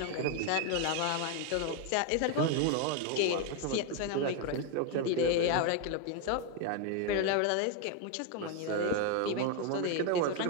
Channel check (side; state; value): both; different; correlation 0.01